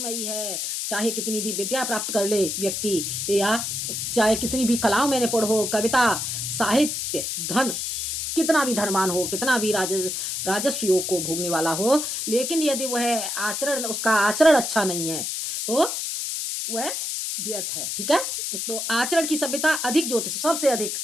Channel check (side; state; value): left; noise; hiss, 3 dB below the sound